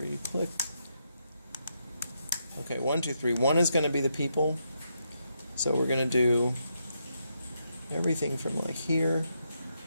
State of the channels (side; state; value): both; inverted; correlation -0.80